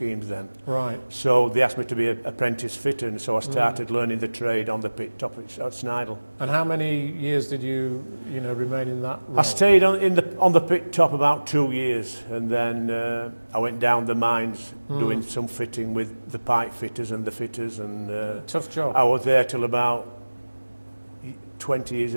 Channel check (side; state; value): both; inverted; correlation -1.00